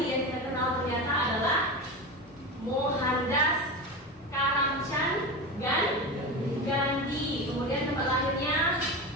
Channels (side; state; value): both; normal; correlation 0.23